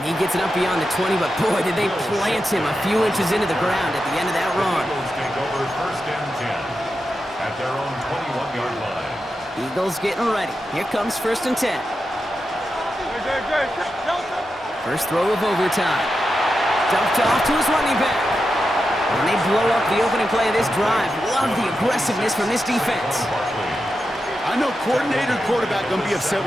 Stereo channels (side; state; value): both; normal; correlation 0.89